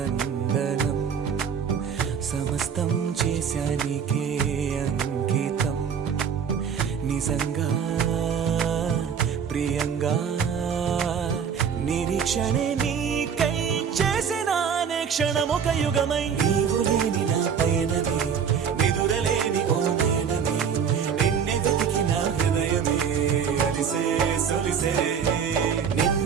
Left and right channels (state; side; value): quieter; left; 7.2 dB